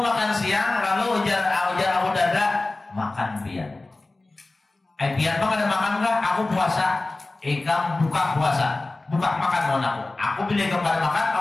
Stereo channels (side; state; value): right; quieter; 3.1 dB